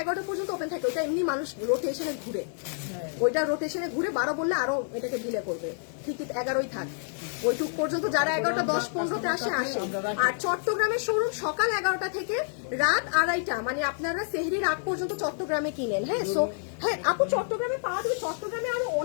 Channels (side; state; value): right; silent; digital silence